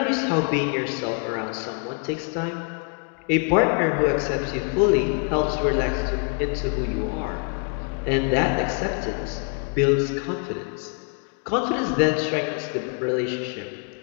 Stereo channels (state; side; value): quieter; right; 38.9 dB